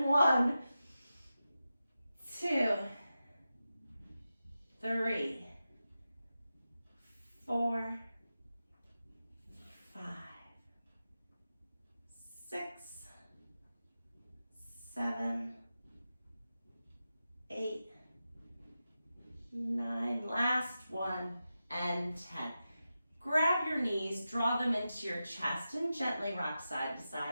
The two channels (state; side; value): inverted; both; correlation -0.92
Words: 1, 3, 4, 5, 6, 7, 8, 9, last one, and 10. Grab your knees, draw them into your chest, and gently rock side to